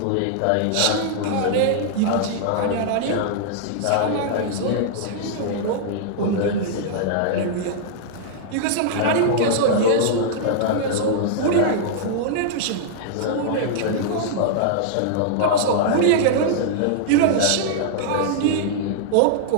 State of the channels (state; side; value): different; both; correlation -0.01